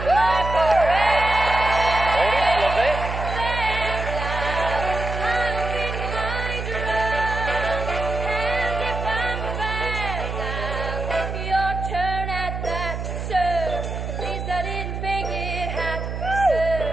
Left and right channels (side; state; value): right; noise; hum, 5 dB below the sound